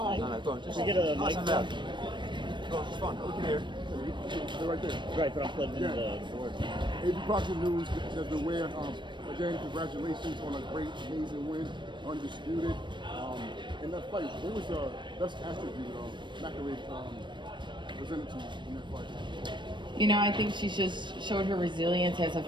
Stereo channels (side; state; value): left; late; 0.22 ms